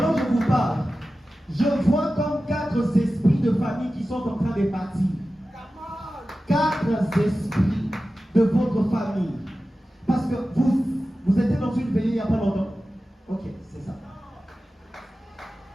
que je vous parle, je vois comme 4 esprits de famille qui sont en train de partir. 4 esprits de votre famille. Parce que vous étiez dans une veillée il n'y a pas longtemps. Ok, c'est ça.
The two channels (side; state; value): both; normal; correlation 0.94